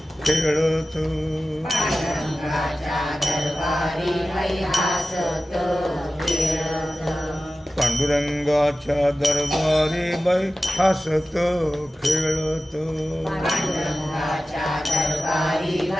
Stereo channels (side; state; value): both; normal; correlation 0.95